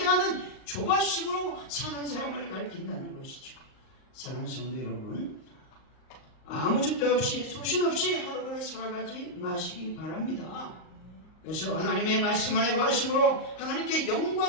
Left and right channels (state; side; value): late; right; 38 ms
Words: 하는 조바심으로 사는 사람을 가리킨다는 것이죠. 사랑하는 성도 여러분, 아무 줏대 없이 소신 없이 하루를 살아가지 마시기 바랍니다. 그래서 하나님의 말씀 안에 거하심으로 하나님께